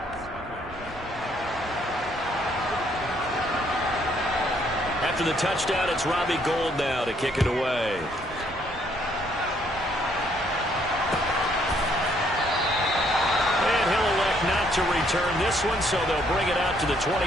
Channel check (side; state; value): both; normal; correlation 0.68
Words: After the touchdown, it's Robbie Gould now to kick it away. Not to return this one, so they'll bring it out to the 25